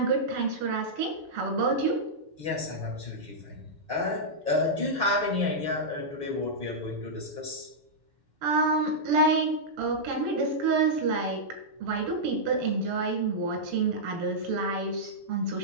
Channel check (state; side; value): late; left; 6.9 ms